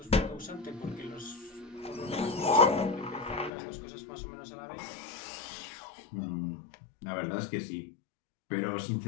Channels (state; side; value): drops out; right; at 3.5 s